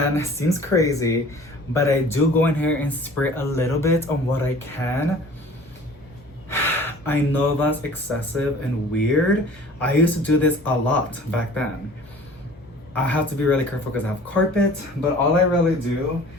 it seems crazy, but I do go in here and spray a little bit on what I can. I know that's excessive and weird. I used to do this a lot back then. I have to be really careful because I have carpet, but all I really do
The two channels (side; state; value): both; normal; correlation 0.46